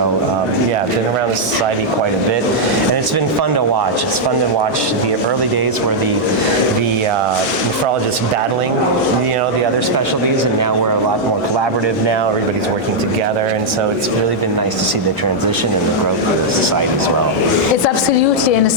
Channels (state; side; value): normal; both; correlation -0.05